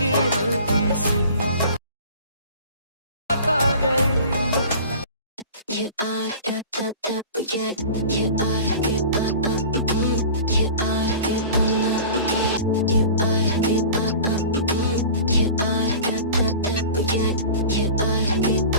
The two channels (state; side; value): inverted; both; correlation -0.39